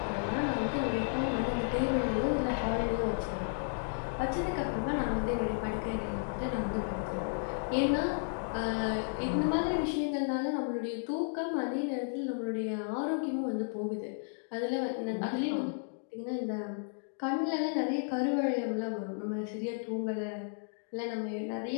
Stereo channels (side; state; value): right; silent; digital silence